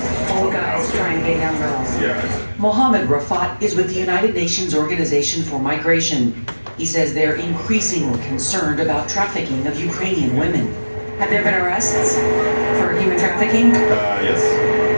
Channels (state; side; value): inverted; both; correlation -1.00